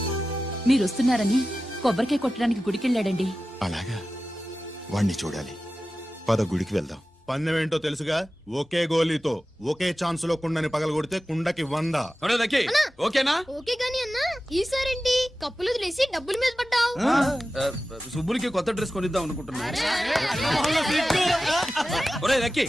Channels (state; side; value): normal; both; correlation 0.94